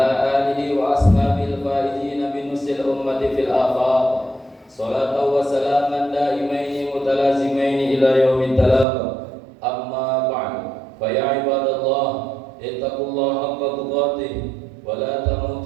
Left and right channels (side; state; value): left; drops out; at 8.8 s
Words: آله وأصحابه الفائزين بنصر الأمة في الآفاق صلاة وسلاما دائمين متلازمين إلى يوم التلاق أما بعد فيا عباد الله اتقوا الله حق تقاته ولا